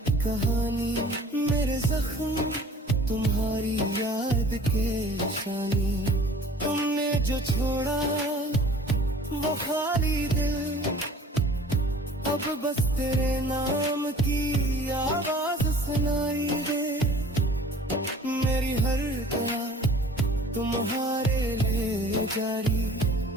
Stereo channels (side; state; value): both; normal; correlation 0.48